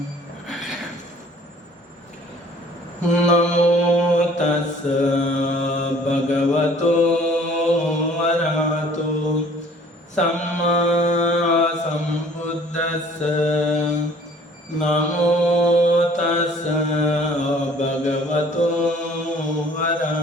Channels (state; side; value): normal; both; correlation 0.54